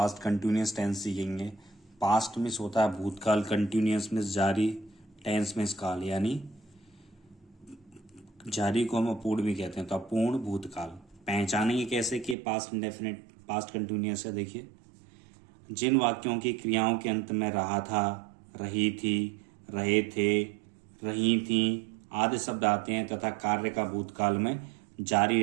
कंटिन्यूस टेंस सीखेंगे। पास्ट मीन्स होता है भूतकाल, कंटिन्यूस मीन्स जारी, टेंस मीन्स काल, यानी जारी को हम अपूर्ण भी कहते हैं, तो अपूर्ण भूतकाल। पहचानेंगे कैसे कि पास्ट इंडेफिनिट पास्ट कंटिन्यूस है। देखिए, जिन वाक्यों की क्रियाओं के अंत में रहा था, रही थी, रहे थे, रही थी आदि शब्द आते हैं तथा कार्य का भूतकाल में जारी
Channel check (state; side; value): drops out; left; at 12.4 s